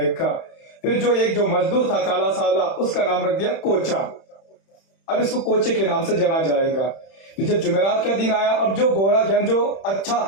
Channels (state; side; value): late; right; 31 ms